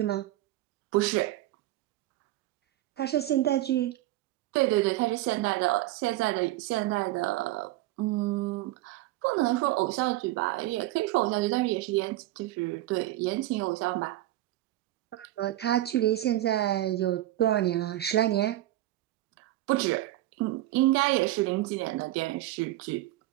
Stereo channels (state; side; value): quieter; left; 15.7 dB